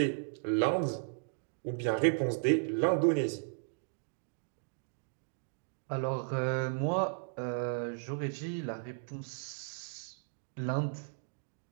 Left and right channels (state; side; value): silent; left; digital silence